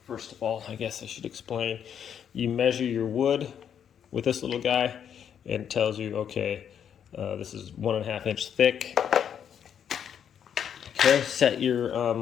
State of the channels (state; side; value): quieter; right; 8.5 dB